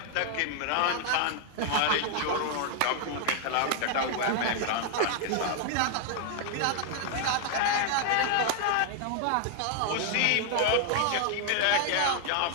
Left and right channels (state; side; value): different; both; correlation 0.00